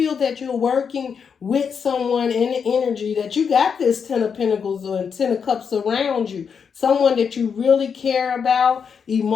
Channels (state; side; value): quieter; right; 6.5 dB